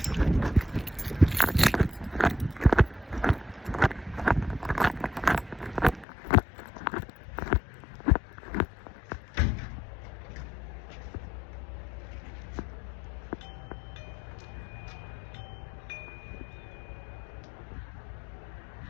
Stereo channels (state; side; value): drops out; right; at 6.1 s